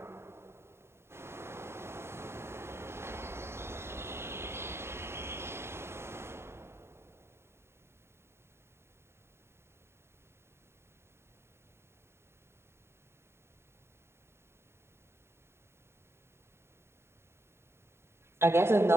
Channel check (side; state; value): left; late; 0.12 ms